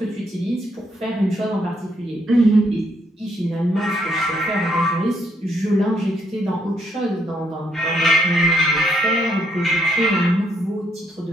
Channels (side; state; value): both; normal; correlation 0.73